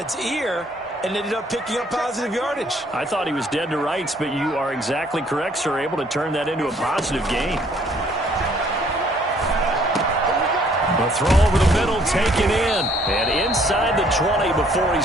ear and ended up picking up positive yardage. I thought he was dead to rights, but you are exactly correct, sir, able to turn that into a positive gain. A throw over the middle, taken in, and inside the 20 before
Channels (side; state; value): both; normal; correlation 0.62